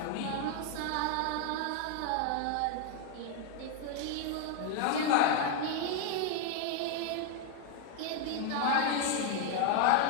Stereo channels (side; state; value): both; different; correlation 0.00